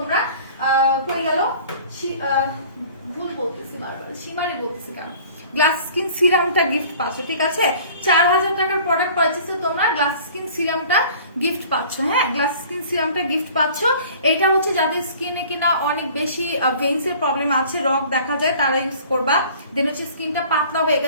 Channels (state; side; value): inverted; both; correlation -0.48